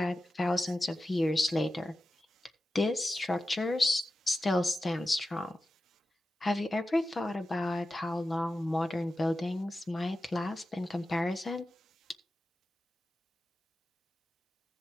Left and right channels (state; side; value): normal; both; correlation 0.93